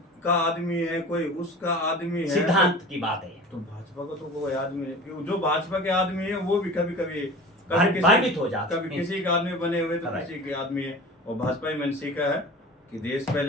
आदमी है, कोई उसका आदमी है, सिद्धांत की बात है। तो भाजपा का तो कोई आदमी है, जो भाजपा के आदमी है वो भी कभी कभी भ्रमित हो जाते कभी किसी के आदमी बने हुए तो किसी के आदमी है। और भाजपा ही मैंने सीखा है कि देश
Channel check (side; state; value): both; normal; correlation 0.37